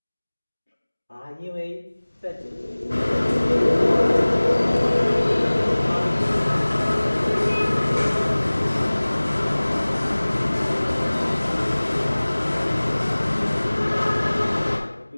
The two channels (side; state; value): both; inverted; correlation -1.00